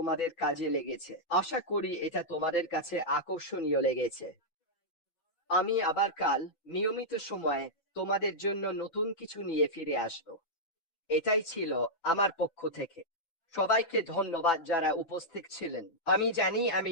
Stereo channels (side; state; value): right; late; 6.0 ms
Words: কাজে লেগেছে, আশা করি এটা তোমাদের কাছে আকর্ষণীয় লেগেছে। আমি আবার কাল নিয়মিত সময়ে তোমাদের জন্য নতুন কিছু নিয়ে ফিরে আসবো। এটাই ছিল আমার পক্ষ থেকে। সবাইকে ধন্যবাদ যারা উপস্থিত ছিলেন। আমি জানি